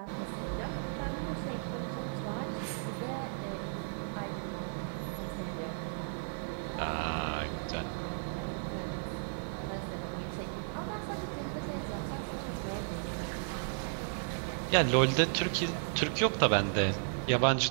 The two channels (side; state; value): left; silent; digital silence